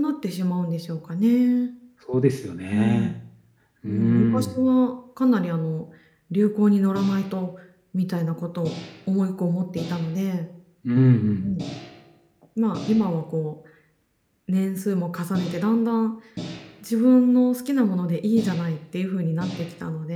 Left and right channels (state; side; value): identical; both; correlation 1.00